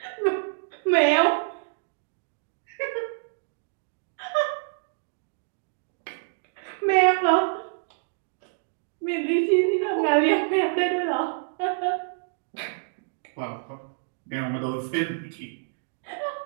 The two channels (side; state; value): left; silent; digital silence